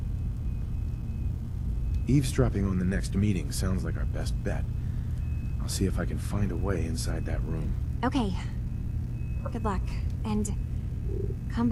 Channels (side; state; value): both; identical; correlation 1.00